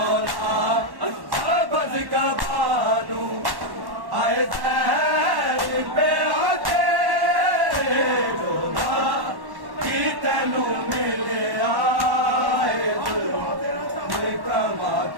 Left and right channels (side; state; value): left; late; 1.1 ms